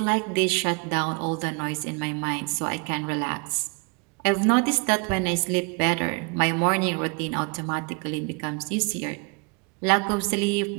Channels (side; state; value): left; quieter; 32.7 dB